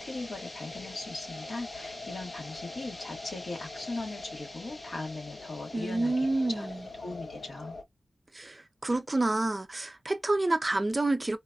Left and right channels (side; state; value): both; normal; correlation 0.97